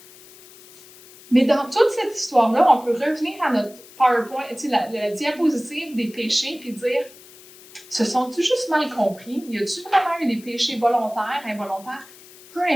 Mais dans toute cette histoire-là, on peut revenir à notre PowerPoint, la diapositive des péchés, puis dire, se sont-ils juste mal compris? Y a-t-il vraiment eu des péchés volontaires, involontaires? Peu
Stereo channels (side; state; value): left; noise; hiss, 22 dB below the sound